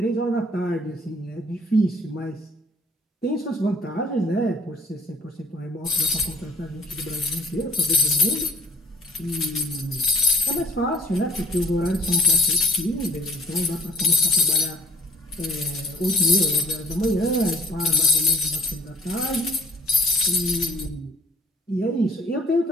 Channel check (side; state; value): both; normal; correlation 0.55